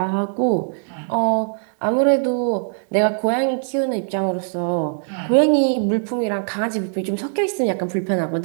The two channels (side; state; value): left; silent; digital silence